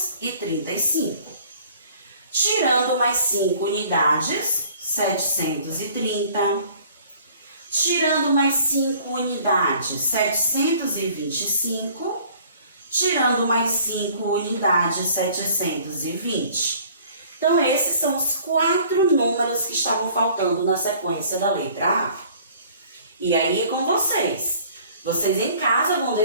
Tirando mais 5 unidades, 730. Tirando mais 5 unidades, 725. Tirando mais 5 unidades, 720. Então, esses são os 4 números que estavam faltando na sequência da letra A. E aí é com vocês. Vocês em casa vão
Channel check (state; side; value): inverted; both; correlation -0.53